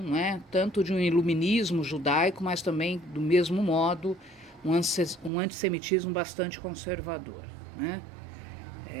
tanto de um iluminismo judaico, mas também, do mesmo modo, um antissemitismo bastante conservador,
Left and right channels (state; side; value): drops out; left; at 5.3 s